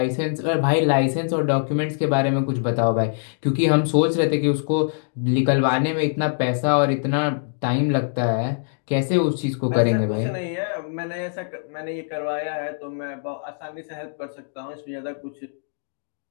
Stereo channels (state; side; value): silent; right; digital silence